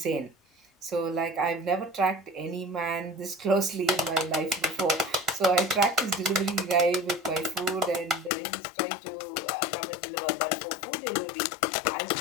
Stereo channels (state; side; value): drops out; right; at 8.3 s